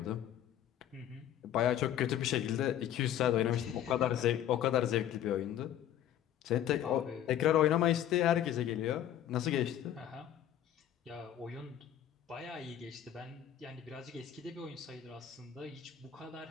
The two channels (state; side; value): quieter; right; 10.9 dB